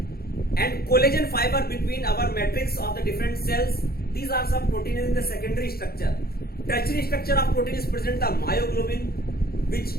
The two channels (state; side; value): late; right; 0.44 ms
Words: and collagen fiber between our matrix of the different cells. These are some proteins in the secondary structure. Tertiary structure of protein is present in the myoglobin, which